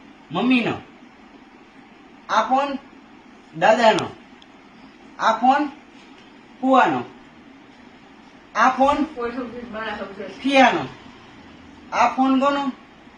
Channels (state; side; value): identical; both; correlation 1.00